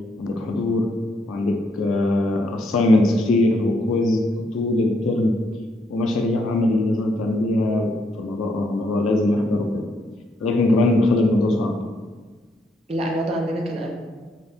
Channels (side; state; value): both; normal; correlation 0.75